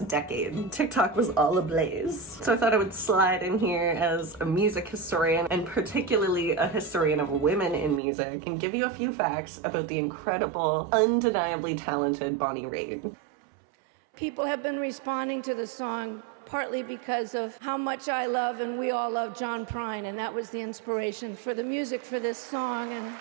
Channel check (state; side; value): drops out; left; at 8.0 s